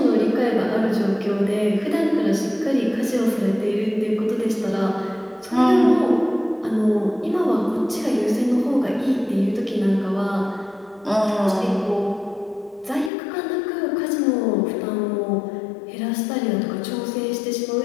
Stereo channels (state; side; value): drops out; right; at 13.1 s